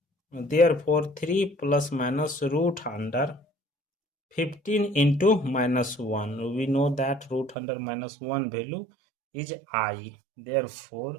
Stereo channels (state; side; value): drops out; left; at 7.6 s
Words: Therefore, 3 plus minus root under 15 into minus 1. We know that root under minus 1 value is I.